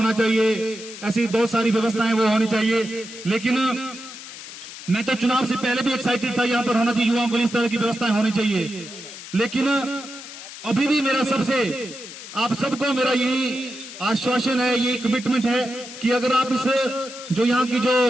चाहिए, ऐसी बहुत सारी व्यवस्थाएं वो होनी चाहिए। लेकिन मैं तो चुनाव से पहले भी एक्साइटेड था, यहाँ पर होना चाहिए, युवाओं को इस तरह की व्यवस्थाएं होनी चाहिए। लेकिन अभी भी मेरा सबसे, आप सबको मेरा यही आश्वासन है, यही कमिटमेंट है कि अगर आप इस जो यहाँ की जो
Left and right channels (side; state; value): left; noise; hiss, 13 dB below the sound